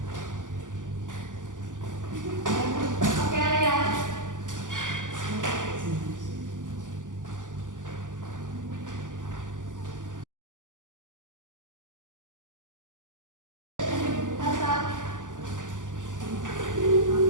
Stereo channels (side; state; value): left; late; 0.87 ms